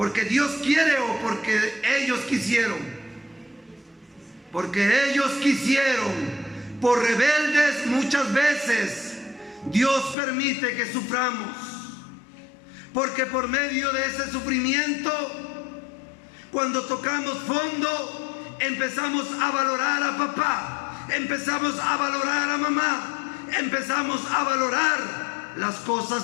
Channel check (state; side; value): drops out; right; at 10.2 s